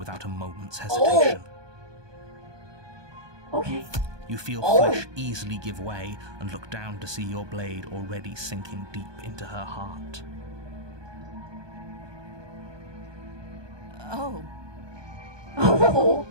a moment's hesitation. Okay. You feel Oh. flesh easily give way and look down to see your blade already sinking deep into her heart. Oh, Oh,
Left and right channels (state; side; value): late; left; 1.2 ms